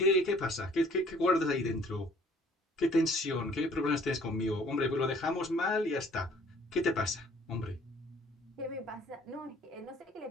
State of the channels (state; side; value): normal; both; correlation 0.56